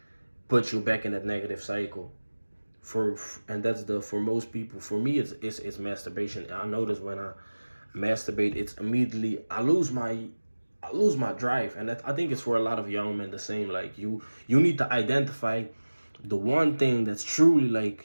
puts you back in that negative cycle. And that's for most people. For me, it's masturbation. I notice when I masturbate, it's immediately I lose my drive. And I think it's for a lot of young men the same. Like, you need to identify the one thing that's truly,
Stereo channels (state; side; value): inverted; both; correlation -1.00